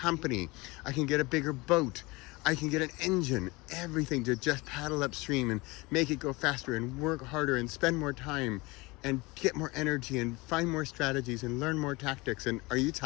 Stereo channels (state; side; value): quieter; right; 23.7 dB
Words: I can get a bigger boat. I can get an engine. Everything to just paddle upstream and make it go faster and work harder and spend more time and get more energy and find more strategies and learn more tactics. And are you